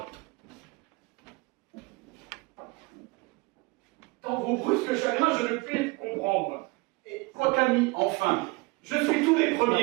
Dans vos brusques chagrins, je ne puis comprendre. Et votre ami, enfin, je suis tous les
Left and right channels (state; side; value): quieter; left; 25.2 dB